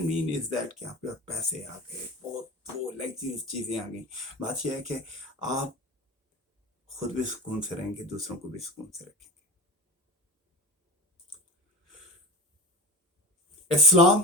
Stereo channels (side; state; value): both; normal; correlation 0.29